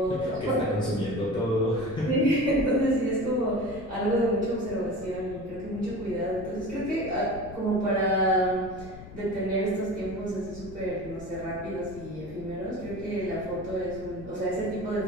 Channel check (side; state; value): left; noise; rumble, 14 dB below the sound